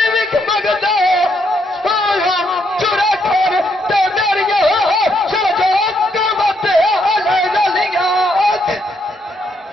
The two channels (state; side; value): normal; both; correlation 0.75